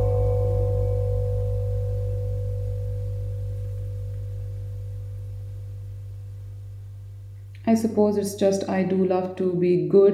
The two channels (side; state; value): both; identical; correlation 1.00